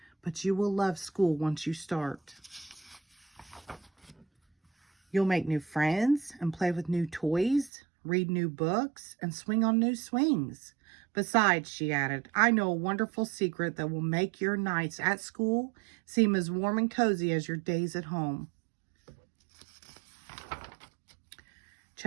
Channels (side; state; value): left; drops out; at 7.7 s